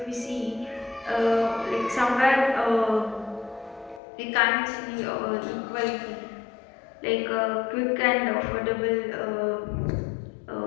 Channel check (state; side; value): drops out; right; at 4.0 s